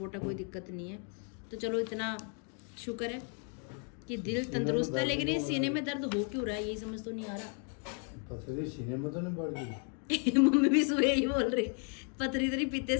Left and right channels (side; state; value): right; quieter; 39.1 dB